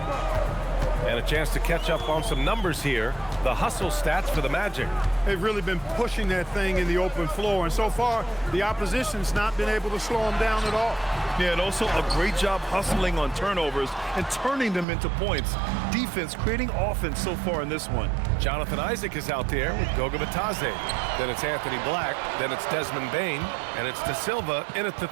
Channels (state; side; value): drops out; left; at 14.9 s